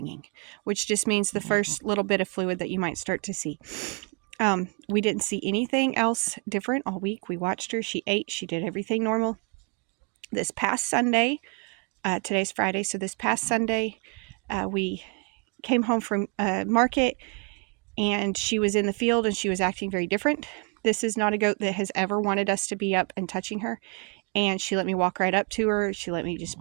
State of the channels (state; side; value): quieter; left; 34.2 dB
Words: which just means the first little bit of fluid that you might start to see. We didn't see anything else different all week. We watched her. She ate. She did everything normal. This past Sunday, today's Friday, so this past Sunday, we came home from market and she was in the field and she was acting very different. This is not a goat that has ever wanted us to be up and touching her. And she let me walk right up to her. She let me just